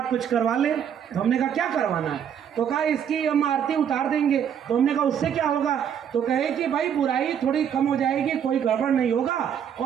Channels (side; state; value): left; quieter; 8.6 dB